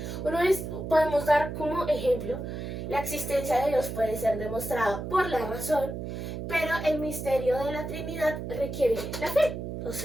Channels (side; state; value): right; noise; hum, 6 dB below the sound